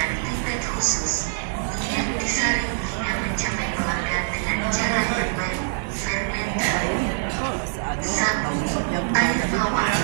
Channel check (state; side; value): silent; left; digital silence